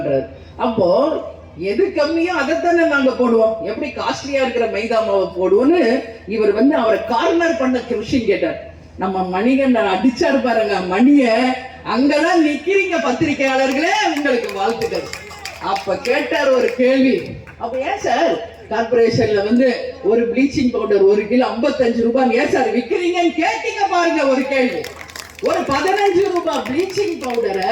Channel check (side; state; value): both; identical; correlation 1.00